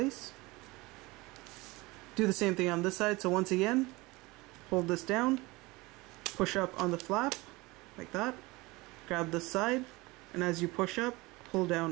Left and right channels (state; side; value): quieter; left; 22.5 dB